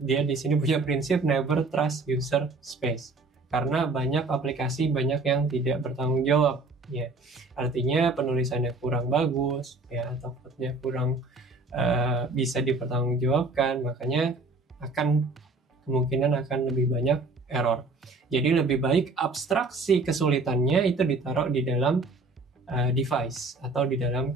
di sini punya prinsip never trust user space. Karena banyak aplikasi banyak yang tidak bertanggung jawab. Ya, artinya penulisannya kurang bagus, ya, atau code-nya kurang bisa dipertanggungjawabkan, makanya kemungkinan akan lebih banyak error. Jadi lebih baik abstraksi kesulitannya itu ditaruh di dalam device atau di dalam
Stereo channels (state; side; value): quieter; left; 3.4 dB